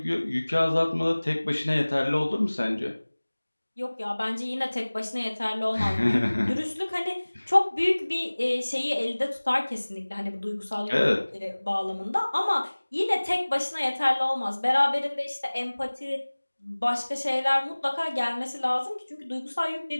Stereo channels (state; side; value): inverted; both; correlation -1.00